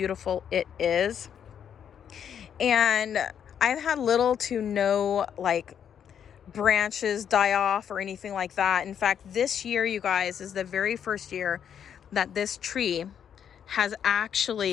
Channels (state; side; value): quieter; right; 8.5 dB